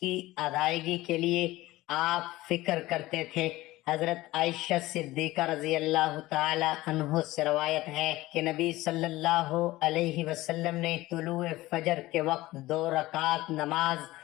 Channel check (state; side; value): quieter; right; 18.0 dB